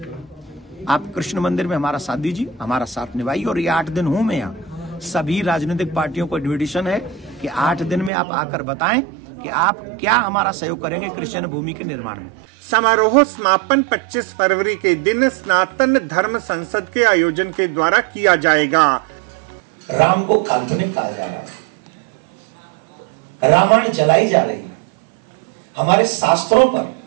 आप कृष्ण मंदिर में हमारा साथ दीजिए, हमारा साथ निभाइए। और ये 8 दिन हूं मैं यहाँ, सभी राजनीतिक पार्टियों को इन्विटेशन है कि 8 दिन में आप आकर बताएं कि आप क्या हमारा सहयोग करेंगे कृष्ण भूमि के निर्माण में। समारोह समापन 25 फरवरी के दिन सनातन धर्म संसद के आयोजन के द्वारा किया जाएगा। राम को काल्पनिक कहा जा रहा है, रामायण जलाई जा रही है, हमारे शास्त्रों पर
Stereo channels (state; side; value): drops out; left; at 8.1 s